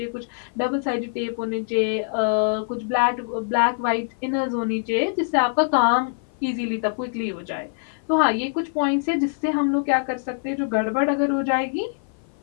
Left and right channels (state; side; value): silent; right; 56 dB below the other